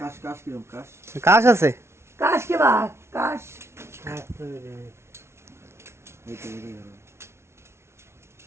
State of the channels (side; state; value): left; late; 0.13 ms